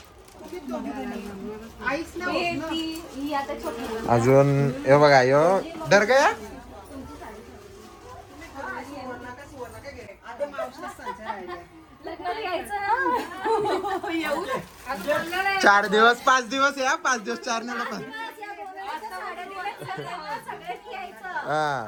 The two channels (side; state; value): both; identical; correlation 1.00